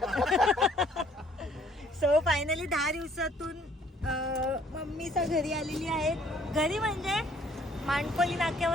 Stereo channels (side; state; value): both; normal; correlation 0.60